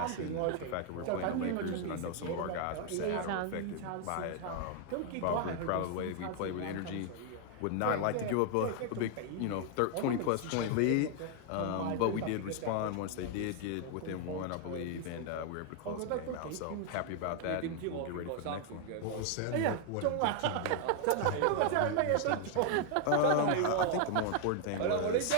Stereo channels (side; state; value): both; different; correlation 0.00